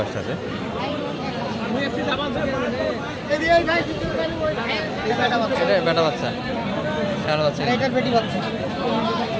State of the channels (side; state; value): both; identical; correlation 1.00